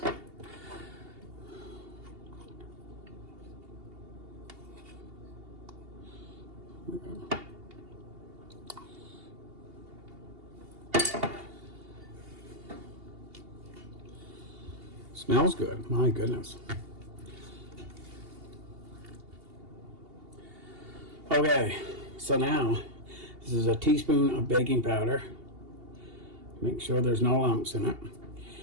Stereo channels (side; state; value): left; late; 2.8 ms